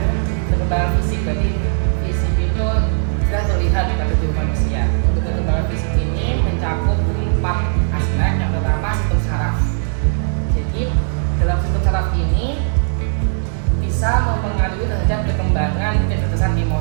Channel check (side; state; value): left; silent; digital silence